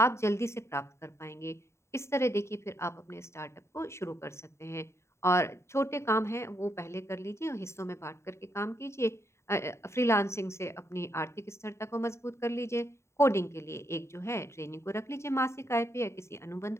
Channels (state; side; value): late; right; 0.13 ms